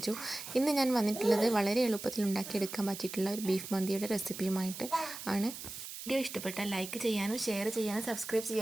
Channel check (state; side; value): noise; right; hiss, 10 dB below the sound